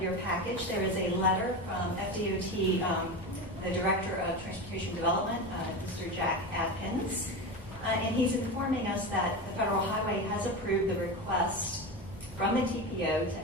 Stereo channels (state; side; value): normal; both; correlation 0.22